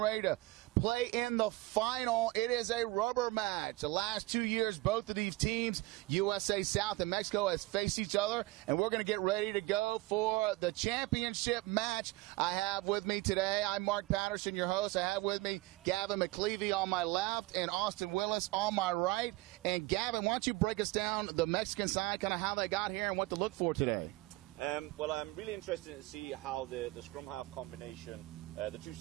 ready to play in the final. It is a rubber match. The last 2 years, both of these teams, USA South and Mexico, has faced each other, and we're going to get ready to go for the championship match. I have with me today, I'm Mark Patterson, your host. I have with me Gavin McLeavy on my left and Austin Willis on my right. And Gavin, why don't you break us down the Mexican side, kind of how they got here and what to look for today? Well, I'm really interested to see how the scrum half combination, the two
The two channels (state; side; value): quieter; left; 20.4 dB